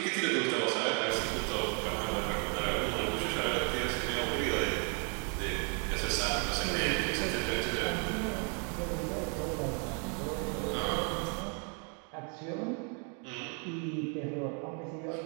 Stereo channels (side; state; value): left; quieter; 38.7 dB